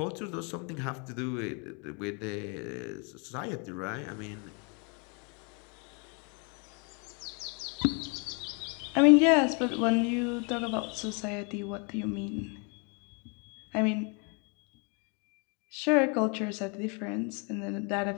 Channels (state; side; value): quieter; right; 34.7 dB